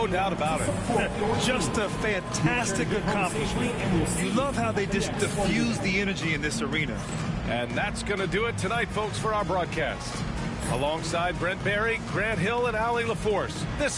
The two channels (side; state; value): both; identical; correlation 1.00